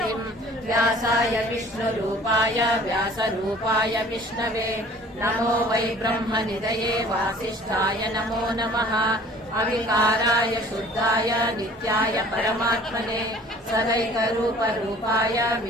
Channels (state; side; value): normal; both; correlation 0.50